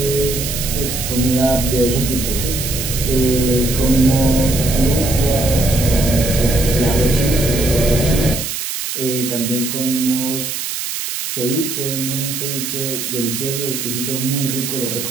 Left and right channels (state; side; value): noise; right; hiss, 4 dB below the sound